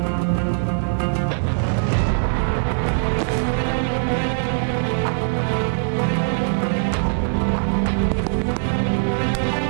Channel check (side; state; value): left; silent; digital silence